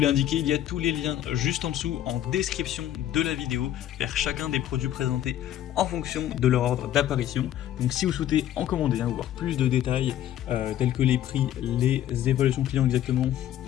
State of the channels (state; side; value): quieter; right; 11.8 dB